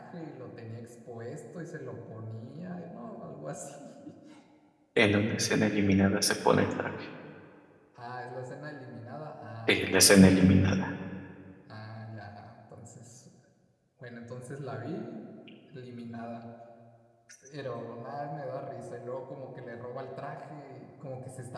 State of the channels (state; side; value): identical; both; correlation 1.00